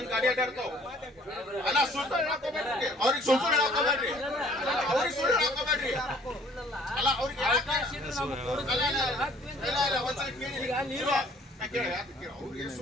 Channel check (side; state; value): both; normal; correlation 0.56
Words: ಗಾಡಿ ಅಡ್ಡಾಡ್ತಾವ. ಅಲ್ಲ ಸುಳ್ಳು ಹಾಕೋಬೇಡ್ರಿ, ಅವ್ರಿಗೆ ಸುಳ್ಳು ಹಾಕೋಬೇಡ್ರಿ, ಅವ್ರಿಗೆ ಸುಳ್ಳು ಹಾಕೋಬೇಡ್ರಿ. ಅಲ್ಲ ಅವ್ರಿಗೆ ಅವ್ರಿಗೆ